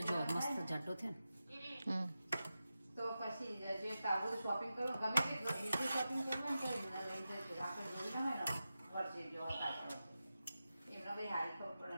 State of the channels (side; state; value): both; inverted; correlation -0.92